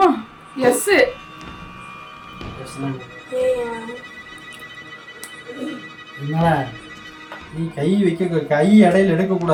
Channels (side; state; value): both; identical; correlation 1.00